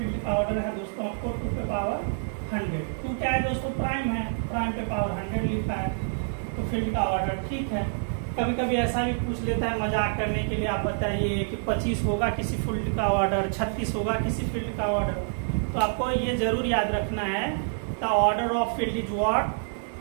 का ऑर्डर है दोस्तों आपको 2 पे पावर 100। 2 क्या है दोस्तों, प्राइम है, प्राइम पे पावर 100 लिखा है, तो फील्ड का ऑर्डर ठीक है। कभी कभी ऐसा भी पूछ लेता है मजाक करने के लिए, आप बताइए कि 25 होगा किसी फील्ड का ऑर्डर, 36 होगा किसी फील्ड का ऑर्डर, तो आपको ये जरूर याद रखना है the order of field is what,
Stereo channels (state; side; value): silent; left; digital silence